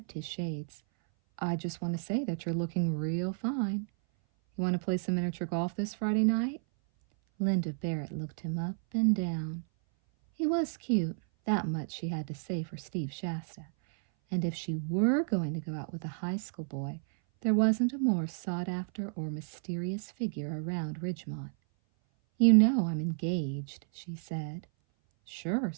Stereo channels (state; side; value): silent; left; 56 dB below the other